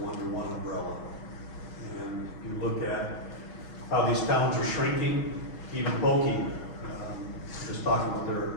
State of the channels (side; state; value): right; late; 6.3 ms